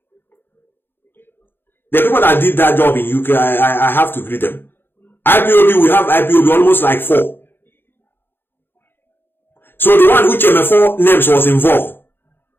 The people that did that job in UK, I have to greet them. IPOB, we have IPOB almost like 4. So the one which MF4 names was involved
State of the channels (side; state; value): right; late; 0.10 ms